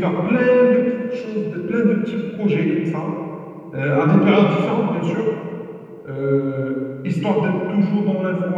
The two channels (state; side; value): identical; both; correlation 1.00